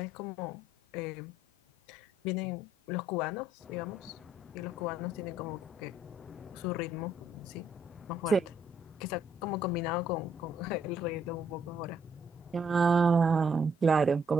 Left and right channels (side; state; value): both; normal; correlation 0.69